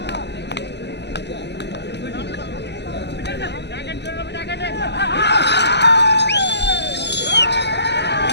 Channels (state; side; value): late; right; 0.50 ms